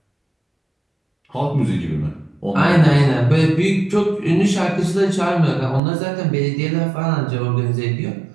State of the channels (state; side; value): drops out; left; at 5.8 s